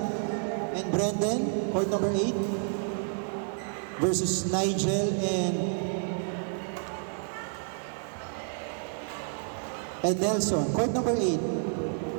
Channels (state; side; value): silent; left; 58 dB below the other